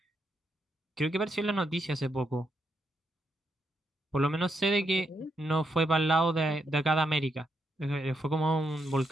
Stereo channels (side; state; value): both; normal; correlation 0.80